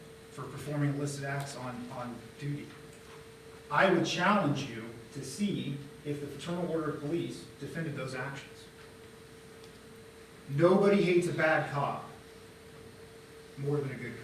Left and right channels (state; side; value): identical; both; correlation 1.00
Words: for performing illicit acts on duty. I would challenge you to see if the Fraternal Order of Police defended those actions. Nobody hates a bad cop more than a good